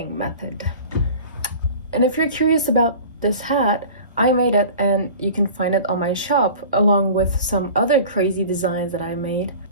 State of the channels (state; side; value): inverted; both; correlation -0.40